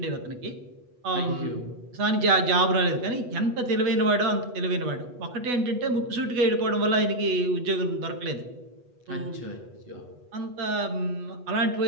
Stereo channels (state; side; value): late; left; 8.2 ms